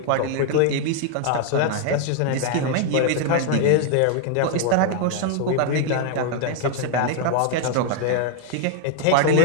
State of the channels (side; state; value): both; different; correlation 0.00